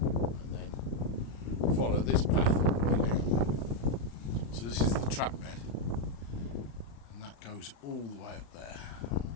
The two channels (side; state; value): right; late; 35 ms